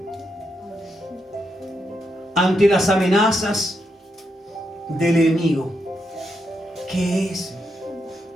Ante las amenazas del enemigo, ¿qué es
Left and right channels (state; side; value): normal; both; correlation 0.82